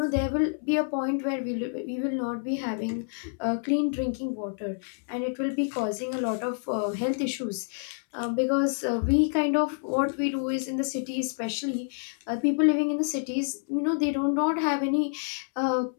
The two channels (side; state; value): right; silent; 59 dB below the other